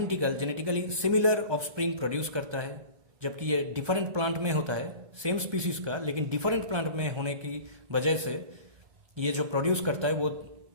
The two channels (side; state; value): left; late; 1.2 ms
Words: सिमिलर ऑफस्प्रिंग प्रोड्यूस करता है, जबकि ये डिफरेंट प्लांट में होता है सेम स्पीसीज का, लेकिन डिफरेंट प्लांट में होने की वजह से ये जो प्रोड्यूस करता है वो